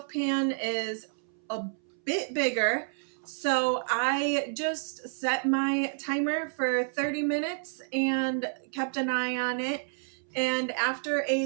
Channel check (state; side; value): silent; left; 58 dB below the other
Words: pan is a bit bigger, so I just set my timer for 30 minutes and kept an eye on it. And after